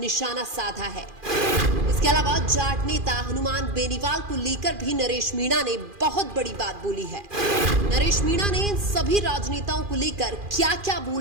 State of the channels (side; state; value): left; late; 2.4 ms